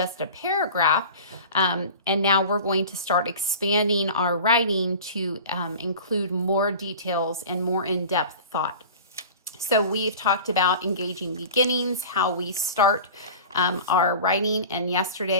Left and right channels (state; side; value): inverted; both; correlation -0.38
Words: a paragraph, and now we're going to start expanding our writing to include more details and more in-depth thought. So we've talked about engaging beginnings, how we start our writing, and